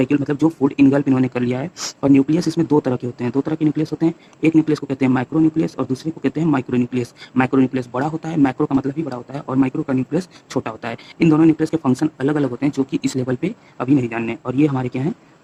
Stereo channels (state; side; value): identical; both; correlation 1.00